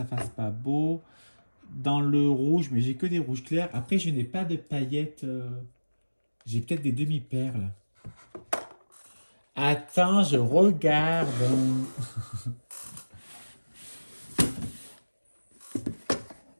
fasse pas beau. Dans le rouge, mais j'ai que des rouges clairs. Après, je n'ai pas de paillettes. J'ai peut-être des demi-perles. Attends, je regarde.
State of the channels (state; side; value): inverted; both; correlation -1.00